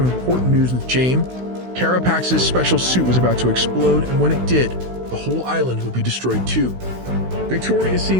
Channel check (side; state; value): left; late; 16 ms